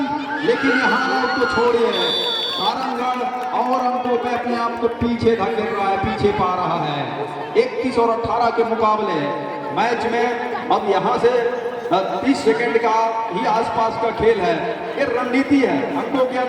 लेकिन यहाँ लोग तो छोड़िए, सारंगगढ़ और अंकों पे अपने आप को पीछे धकेल रहा है, पीछे पा रहा है। 31 और 18 के मुकाबले मैच में अब यहाँ से 30 सेकंड का ही आसपास का खेल है। ये रणनीति है, अंकों के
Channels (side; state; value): both; identical; correlation 1.00